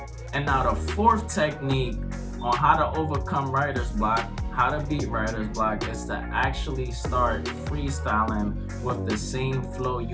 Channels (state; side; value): identical; both; correlation 1.00